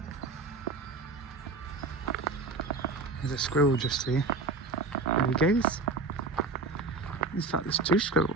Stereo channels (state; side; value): quieter; left; 3.7 dB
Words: There's a squirrel just here. There he goes. In fact, there's two